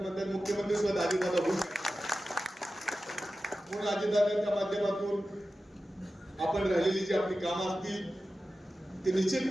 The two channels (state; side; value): normal; both; correlation 0.94